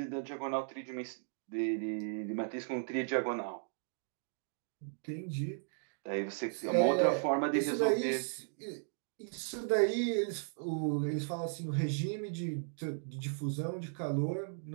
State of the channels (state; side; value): silent; left; digital silence